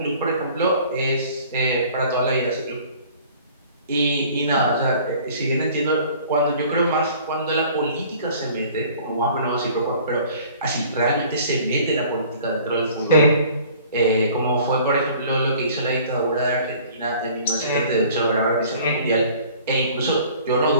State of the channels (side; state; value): both; inverted; correlation -0.50